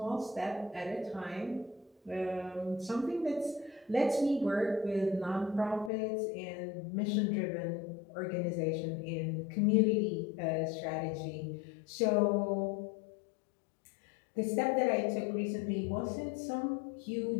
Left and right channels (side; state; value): right; drops out; at 5.9 s